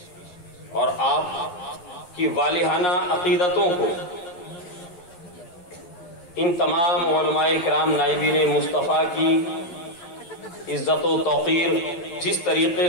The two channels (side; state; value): right; late; 11 ms